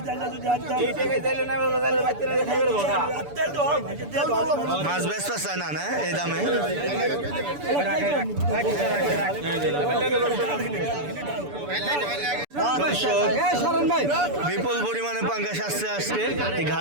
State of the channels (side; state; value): left; late; 6.9 ms